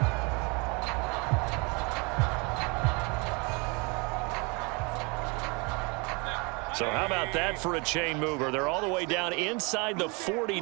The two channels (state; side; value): quieter; left; 30.1 dB